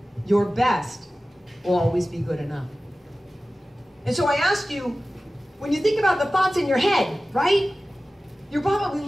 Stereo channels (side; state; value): both; normal; correlation 0.96